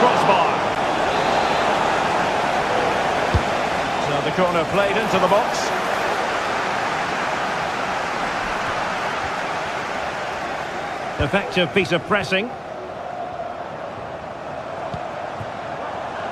The corner played into the box. Effective piece of pressing.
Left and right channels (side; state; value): both; identical; correlation 1.00